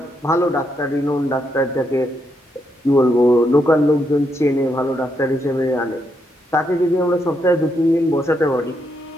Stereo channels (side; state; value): both; normal; correlation 0.79